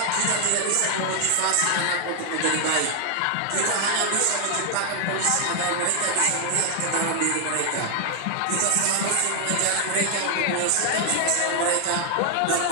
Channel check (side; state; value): both; different; correlation 0.00